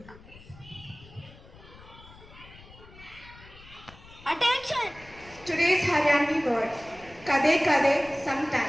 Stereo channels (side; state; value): left; noise; rumble, 21 dB below the sound